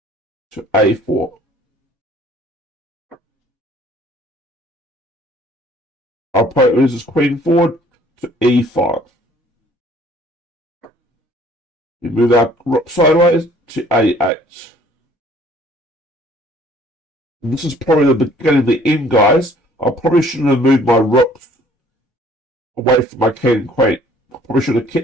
to a4. Our opponent moves his queen forward to e5. We move our rook sideways to a8. And this is probably the beginning of the end, guys. I probably shouldn't have moved my rook away from my king and queen. I probably should have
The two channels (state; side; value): normal; both; correlation 0.57